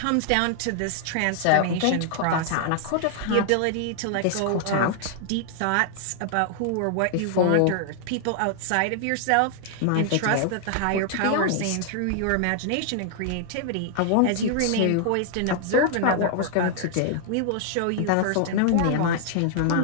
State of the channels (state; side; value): different; both; correlation 0.00